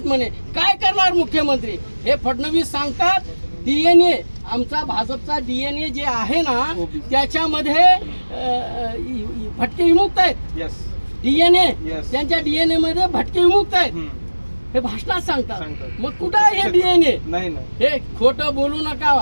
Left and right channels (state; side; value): inverted; both; correlation -1.00